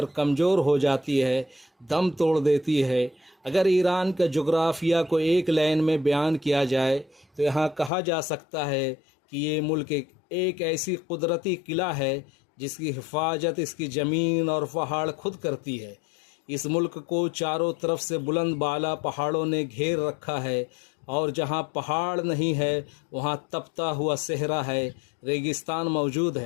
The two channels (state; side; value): drops out; right; at 7.9 s